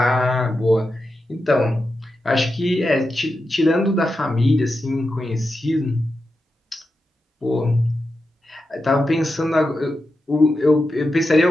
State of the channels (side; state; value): both; normal; correlation 0.89